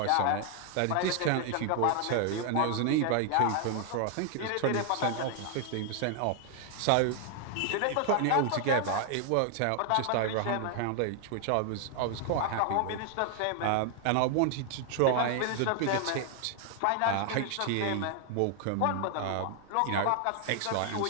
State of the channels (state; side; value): different; both; correlation 0.00